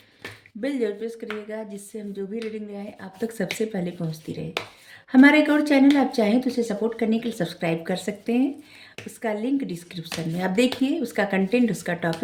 बेल जरूर प्रेस करिएगा, जिससे हम जो भी रीडिंग ले आए आप तक सबसे पहले पहुंचती रहे। हमारा एक और चैनल आप चाहें तो उसे सपोर्ट करने के लिए सब्सक्राइब कर सकते हैं। उसका लिंक डिस्क्रिप्शन में आप देखिए। उसका कंटेंट, उसका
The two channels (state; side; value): identical; both; correlation 1.00